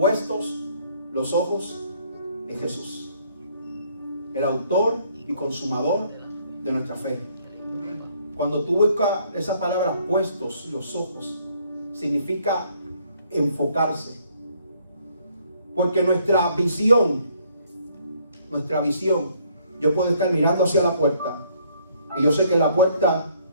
los ojos en Jesús, el autor y consumador de nuestra fe. Cuando tú buscas esa palabra, puestos los ojos, significa enfocarse. Porque nuestra visión, yo puedo estar mirando hacia la puerta y yo sé que la puerta,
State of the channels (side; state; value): both; inverted; correlation -0.65